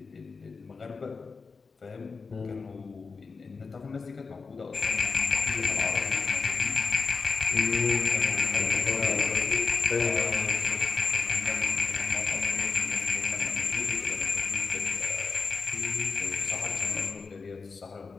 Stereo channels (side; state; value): right; quieter; 4.7 dB